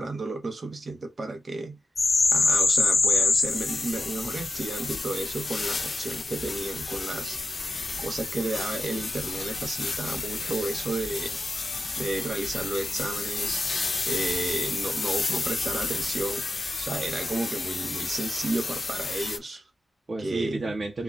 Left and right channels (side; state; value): both; normal; correlation 0.91